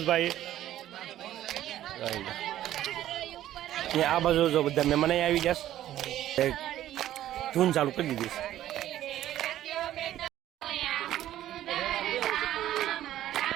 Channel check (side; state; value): left; quieter; 12.9 dB